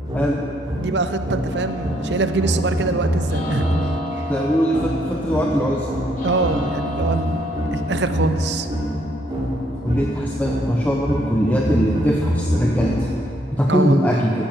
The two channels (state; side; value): normal; both; correlation 0.71